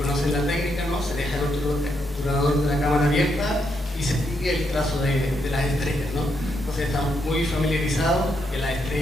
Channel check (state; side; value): normal; both; correlation 0.79